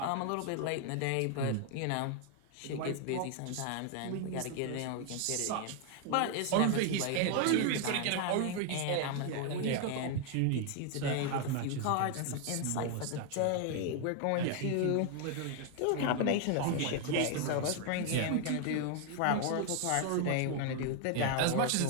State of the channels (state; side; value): different; both; correlation 0.00